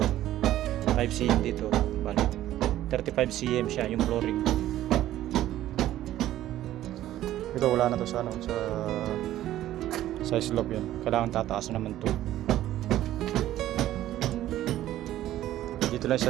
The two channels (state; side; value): quieter; left; 13.6 dB